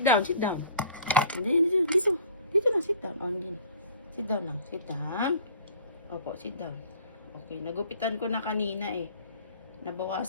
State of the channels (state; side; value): inverted; both; correlation -0.50